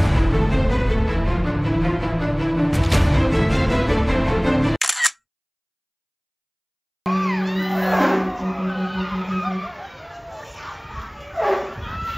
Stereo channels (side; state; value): both; identical; correlation 1.00